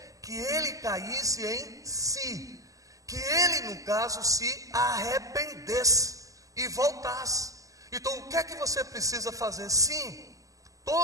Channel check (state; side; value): late; left; 0.16 ms